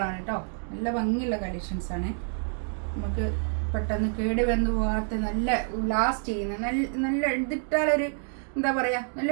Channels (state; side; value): silent; left; 59 dB below the other